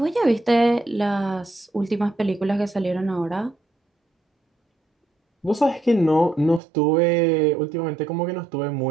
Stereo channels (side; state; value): left; drops out; at 6.6 s